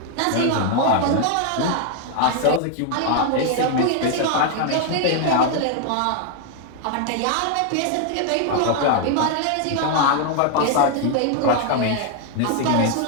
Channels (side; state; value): both; different; correlation 0.00